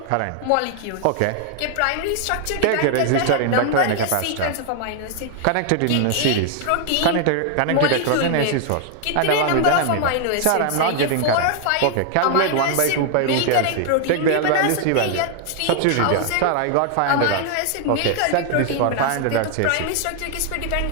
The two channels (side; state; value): both; different; correlation 0.00